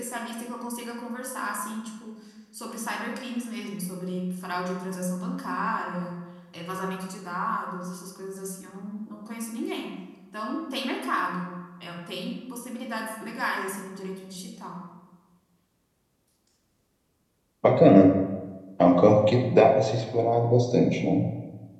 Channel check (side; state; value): both; identical; correlation 1.00